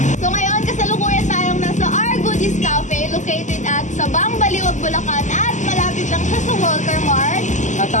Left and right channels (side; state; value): right; late; 0.35 ms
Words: So ngayon, kasalukuyan tayong nasa Our Goodies Cafe located at Sabang Baliwag, Bulacan at malapit lang siya sa Walter Mart. At